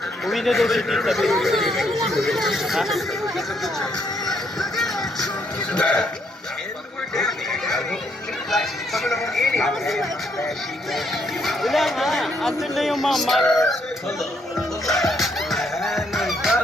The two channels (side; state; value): both; normal; correlation 0.73